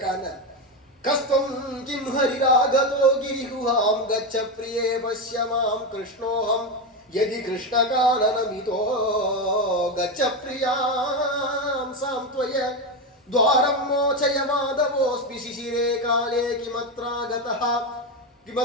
கஸ்தம் கிம் ஹரிராகதோ கிரிகுஹாம் கச்ச பிரியே பஷ்யமாம் கிருஷ்ணோஹம் யதி கிருஷ்ணகானனமிதோ கச்ச பிரியாம் சாம்த்வய துவாரம் மோச்சய மாதவோஸ்மி சிசிரே காலே கிமத்ராகதஹ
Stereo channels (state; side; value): normal; both; correlation 0.12